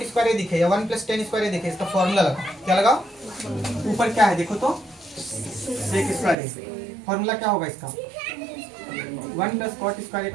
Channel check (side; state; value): left; drops out; at 6.4 s